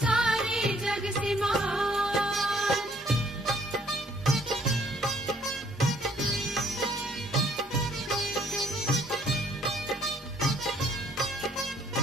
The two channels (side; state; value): both; normal; correlation 0.63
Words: जग से महान।